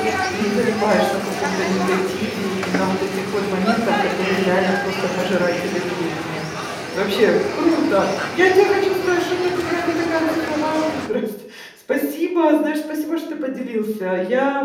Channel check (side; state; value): both; identical; correlation 1.00